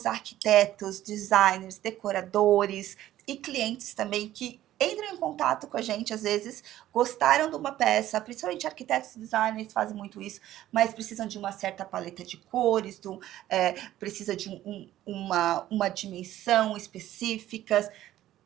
arquitetos, designers, decoradores e clientes também que entram em contato com a gente, às vezes, gostaram de uma peça, principalmente arquitetos e designers fazem muito isso, mas precisam de uma certa paleta de cores, precisa de uma dimensão específica.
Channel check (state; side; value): quieter; left; 13.7 dB